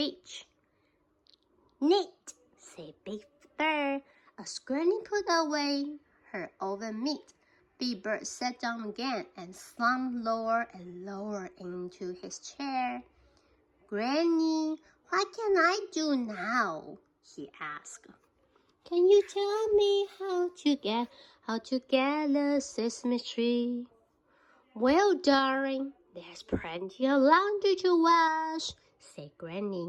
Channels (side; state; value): both; identical; correlation 1.00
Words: Neat, said Big Bird as Granny put away her oven meat. Big Bird sat down again and slumped lower and lower into his chair. Granny, what can I do now? He asked. Can you tell me how to get the Sesame Street? Well, darling, there's plenty of laundry to wash, said